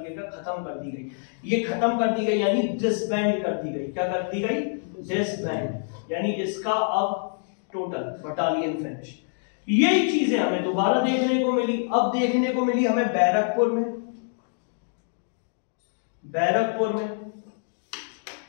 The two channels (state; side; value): silent; right; digital silence